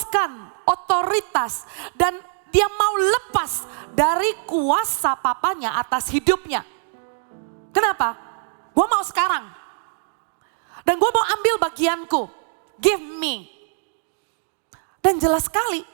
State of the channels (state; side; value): silent; left; digital silence